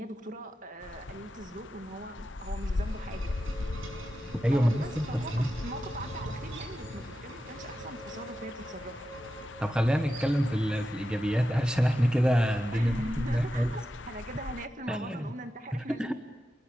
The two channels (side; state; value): both; normal; correlation 0.90